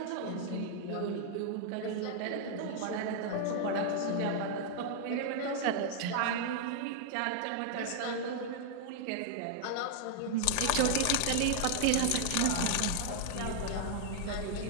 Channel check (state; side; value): different; both; correlation -0.01